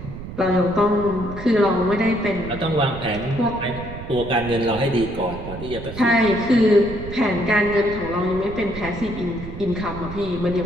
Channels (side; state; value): right; noise; rumble, 11 dB below the sound